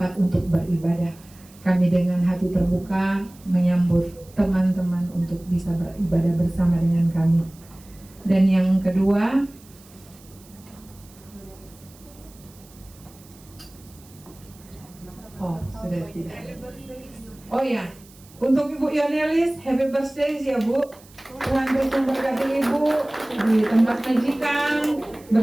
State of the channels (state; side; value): noise; right; hiss, 25 dB below the sound